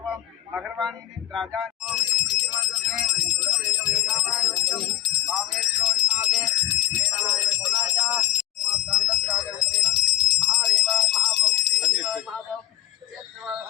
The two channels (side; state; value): right; quieter; 15.2 dB